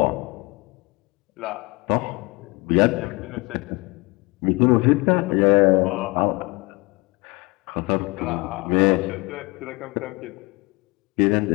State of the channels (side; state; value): right; quieter; 25.5 dB